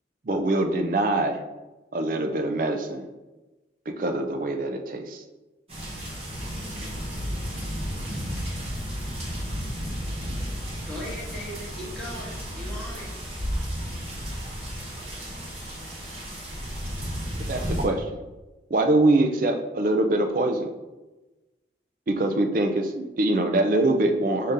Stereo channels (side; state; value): both; normal; correlation 0.54